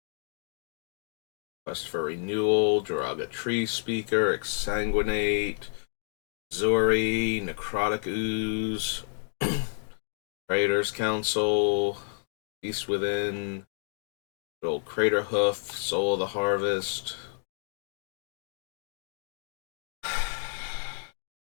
Quest for Renewal, Jiraga Tree Speaker, Exsanguinate, Zori, Necrotic Ooze, Raiders Council, Beast Within, Old Crater Hoof, Soul of the Harvest.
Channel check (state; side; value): silent; right; digital silence